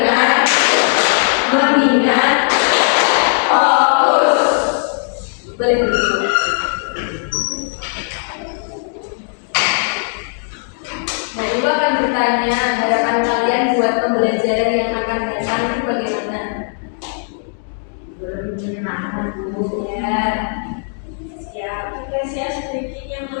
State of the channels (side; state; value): right; silent; digital silence